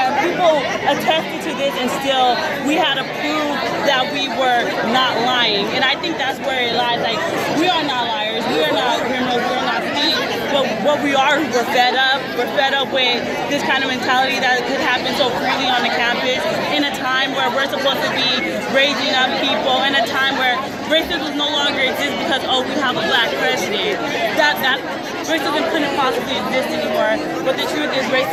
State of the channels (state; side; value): identical; both; correlation 1.00